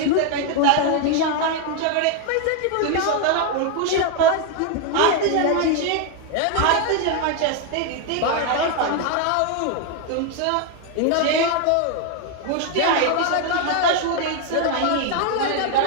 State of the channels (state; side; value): different; both; correlation 0.01